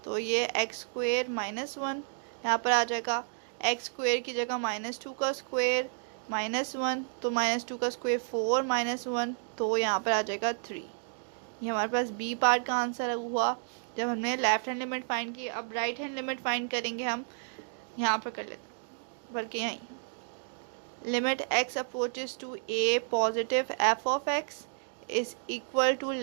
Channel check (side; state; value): left; silent; digital silence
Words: तो ये x² -1 यहाँ पर आ जाएगा। x² की जगह -2 का स्क्वायर -1, तो -2 का स्क्वायर 4 -1, तो यहाँ पर आ जाएगा 3। ये हमारे पास बी पार्ट का आंसर हुआ जब हमने लेफ्ट हैंड लिमिट फाइंड की। अब राइट हैंड लिमिट फाइंड करेंगे हम, यहाँ पर कर लेते हैं, बल्कि यहीं limit x approaches to a positive f of x is equal to